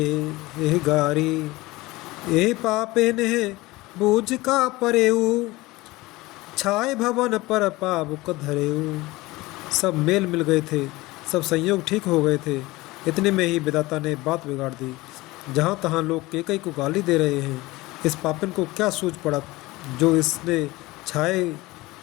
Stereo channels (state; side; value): quieter; right; 20.3 dB